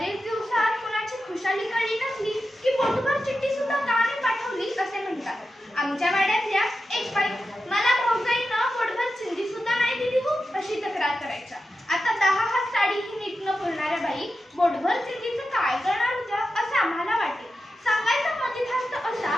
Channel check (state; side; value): normal; both; correlation 0.91